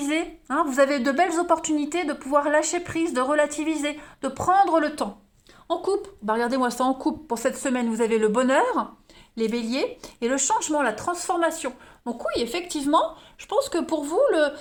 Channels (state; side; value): identical; both; correlation 1.00